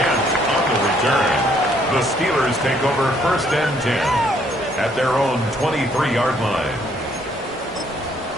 on the return. The Steelers take over first and 10 at their own 23-yard line.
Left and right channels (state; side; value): normal; both; correlation 0.66